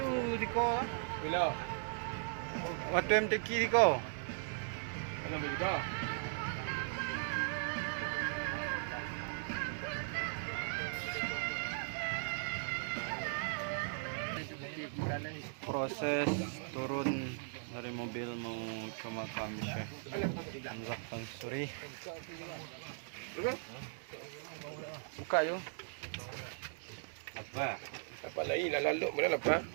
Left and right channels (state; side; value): silent; left; digital silence